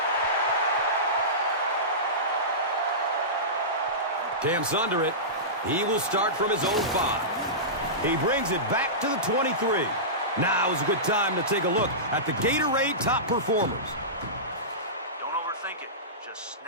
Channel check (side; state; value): both; normal; correlation -0.19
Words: Cam's under it. He will start from his own 5. He brings it back to the 23. Now is a good time to take a look at the Gatorade top performers. Don't overthink it. Just